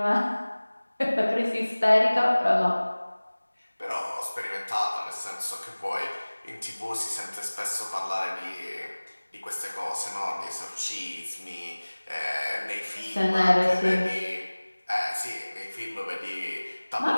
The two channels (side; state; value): both; inverted; correlation -1.00